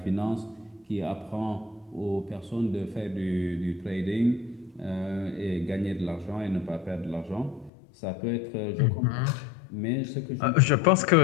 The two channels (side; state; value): right; drops out; at 7.7 s